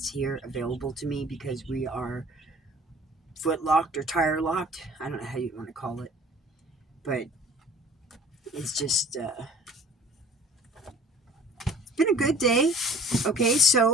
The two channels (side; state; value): both; normal; correlation 0.48